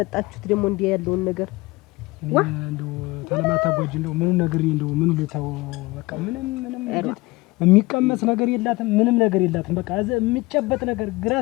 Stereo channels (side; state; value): right; quieter; 21.9 dB